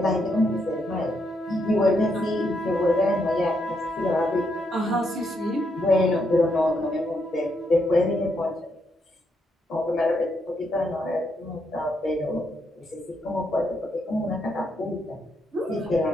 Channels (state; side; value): normal; both; correlation 0.78